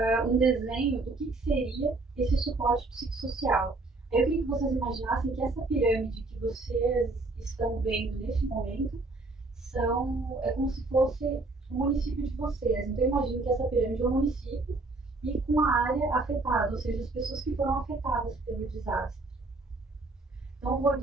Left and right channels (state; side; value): quieter; left; 3.3 dB